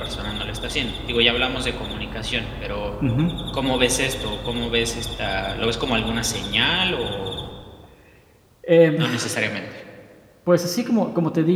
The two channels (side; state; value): both; identical; correlation 1.00